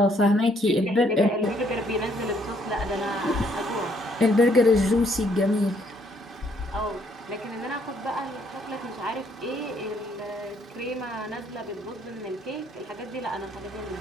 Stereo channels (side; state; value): both; normal; correlation 0.68